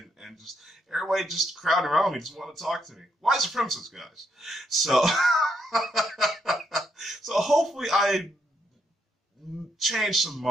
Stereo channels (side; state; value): both; normal; correlation 0.77